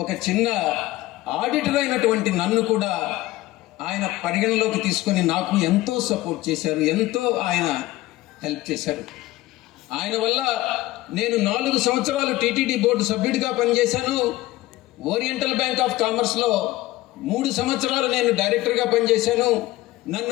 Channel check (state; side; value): quieter; right; 17.6 dB